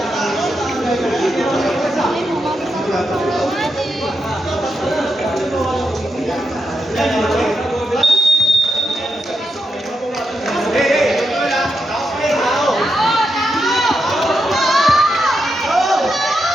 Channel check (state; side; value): normal; both; correlation 0.85